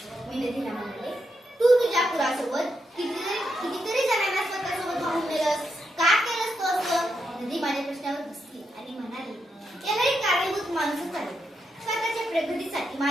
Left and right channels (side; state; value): both; normal; correlation 0.83